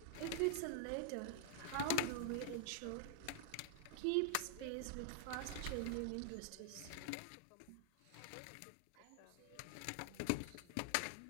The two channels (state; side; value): different; both; correlation -0.01